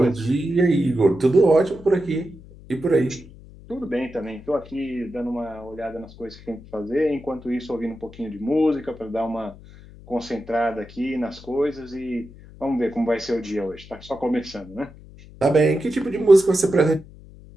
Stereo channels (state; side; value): noise; left; hum, 20 dB below the sound